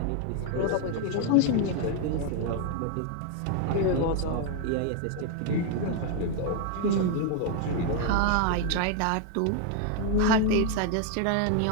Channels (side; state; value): both; different; correlation 0.00